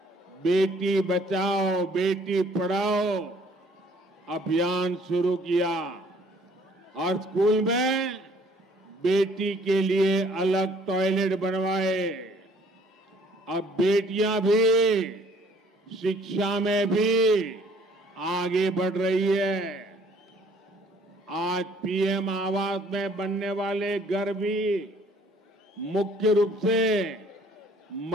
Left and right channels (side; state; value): both; normal; correlation 0.58